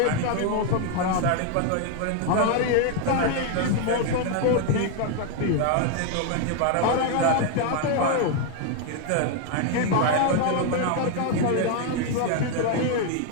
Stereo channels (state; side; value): different; both; correlation 0.00